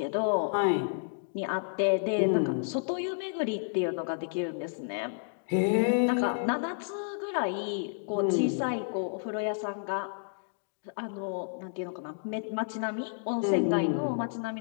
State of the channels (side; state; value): right; silent; digital silence